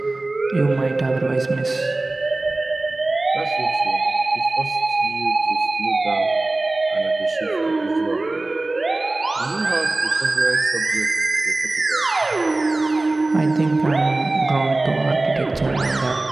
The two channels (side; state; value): left; quieter; 3.0 dB